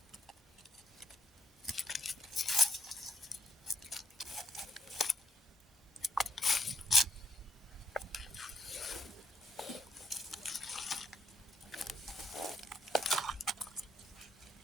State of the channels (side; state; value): both; normal; correlation 0.75